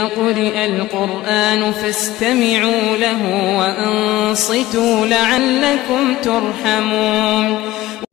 قرئ القرآن فاستمعوا له وأنصتوا لعلكم ترحمون.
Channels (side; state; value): right; quieter; 16.6 dB